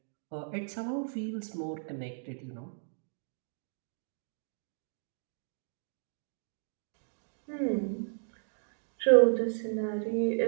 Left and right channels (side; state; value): left; silent; digital silence